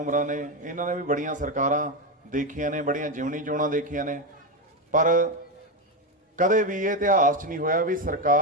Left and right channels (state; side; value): normal; both; correlation 0.10